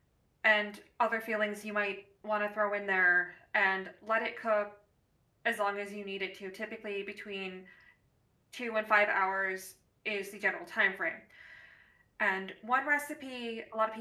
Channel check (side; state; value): both; identical; correlation 1.00